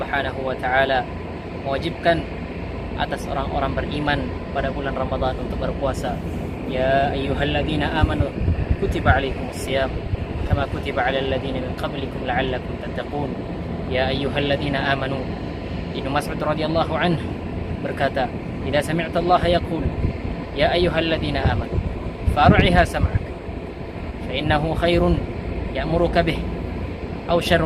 wa taala mewajibkan atas orang-orang beriman pada bulan Ramadan untuk berpuasa. Ya ayyuhalladzina amanu kutiba alaikumusiyam kama kutiba alal ladzina min qablikum la'allakum tattaqun. Ya ayyuhalladzina amanu. Ibnu Mas'ud radhiyallahu anhu berkata, "Idza sami'ta Allah yaqul ya ayyuhalladzina amanu far'iha sam'ak fa innahu khairun ya'muruka bih aw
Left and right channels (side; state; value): both; identical; correlation 1.00